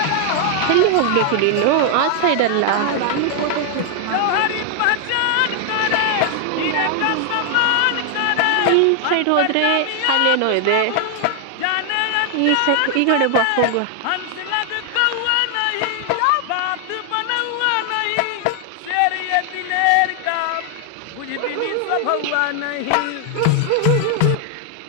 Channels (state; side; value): different; both; correlation 0.00